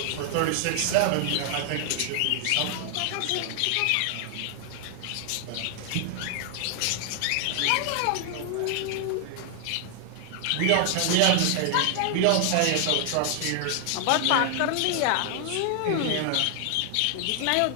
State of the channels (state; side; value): different; both; correlation 0.00